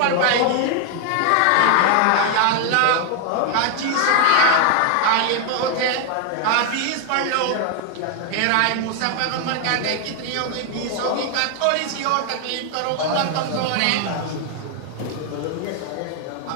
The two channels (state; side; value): different; both; correlation 0.00